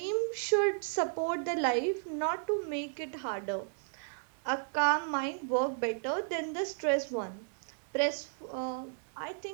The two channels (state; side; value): silent; left; digital silence